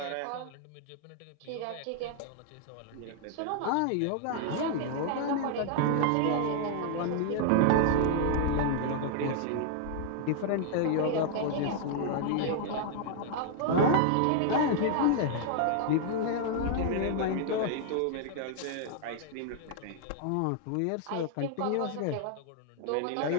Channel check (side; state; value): both; different; correlation 0.00